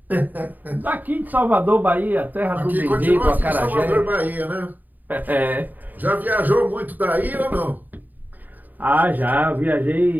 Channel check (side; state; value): left; late; 0.085 ms